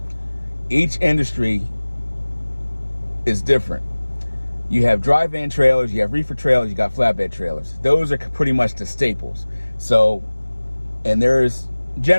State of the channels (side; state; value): both; inverted; correlation -1.00